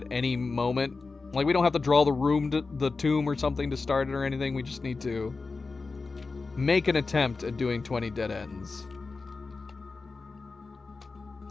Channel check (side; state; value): right; quieter; 4.1 dB